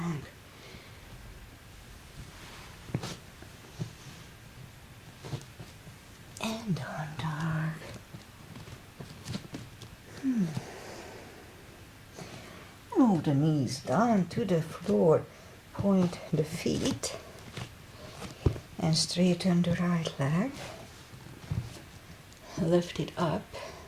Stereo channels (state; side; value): identical; both; correlation 1.00